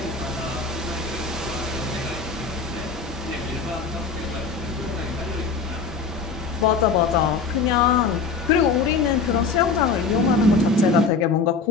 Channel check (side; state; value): right; quieter; 4.7 dB